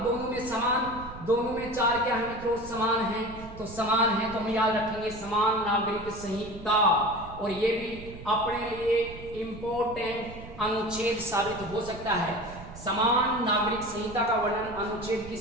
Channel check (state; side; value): noise; right; rumble, 15 dB below the sound